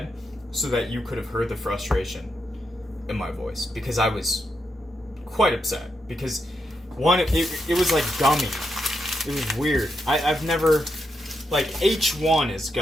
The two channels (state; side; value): normal; both; correlation 0.83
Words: so that you could have heard the frustration in my voice. Because I was quite upset. Because, one, it was like gummy. It was weird. I've never... Like, H1 is